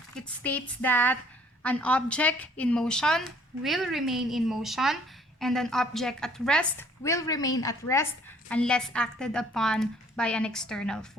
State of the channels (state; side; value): normal; both; correlation 0.58